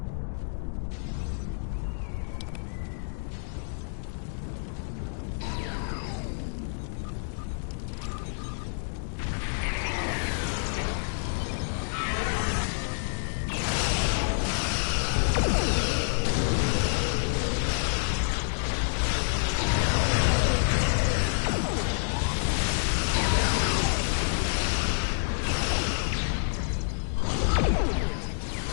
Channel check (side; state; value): right; silent; digital silence